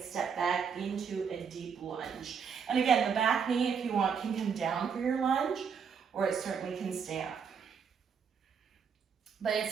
step back into a deep lunge. And again, the back knee, if you want, can come down for your lunge, or it certainly can stay up. But it's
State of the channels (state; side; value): quieter; left; 6.6 dB